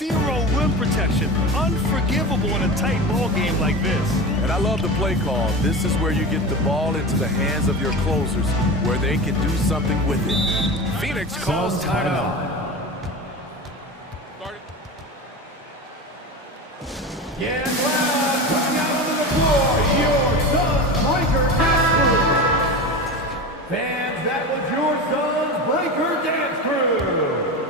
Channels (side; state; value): both; normal; correlation 0.27